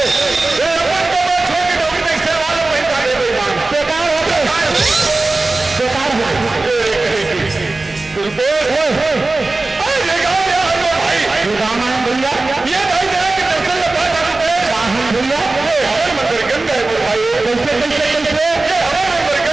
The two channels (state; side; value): quieter; left; 3.2 dB